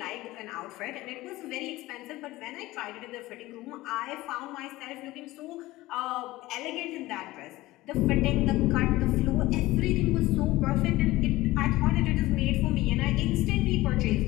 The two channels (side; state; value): right; quieter; 18.2 dB